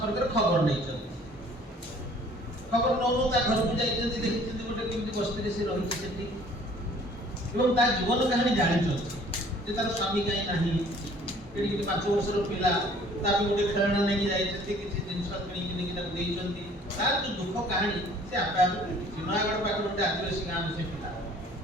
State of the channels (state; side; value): normal; both; correlation 0.54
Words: ଖବର ନେଇଛନ୍ତି। ଖବର ନଉନୁ ତା ଘରକୁ ଯାଇଛନ୍ତି, ଦେଖିଛନ୍ତି ଗୋଟେ କେମିତି ବସ୍ତିରେ ସେ ରହିଛି ସେଠି, ଏବଂ ତା ଜୀବନ କାହାଣୀ ଜାଣିଛନ୍ତି ଯେ ତାର ସ୍ୱାମୀ କାହିଁ ନାହିଁ, ଏଠି 5 ବର୍ଷର ପିଲା, ତା ପାଇଁ ଗୋଟେ ଖେଳଣା ନେଇକି ଯାଇଛନ୍ତି, କିଛି ଜିନିଷ କିଣିକି ନେଇକି ତାକୁ ଦେଇଛନ୍ତି। ତାର ଯୋଉ ଦୁଃଖ କାହାଣୀ ସେ ଆପେ ଆପେ ବୁଝୁଛି। ନୟାଗଡ଼ ପାଖରେ ଗୋଟେ ଆଦିବାସୀ ଗାଁର ସେ ପିଲା,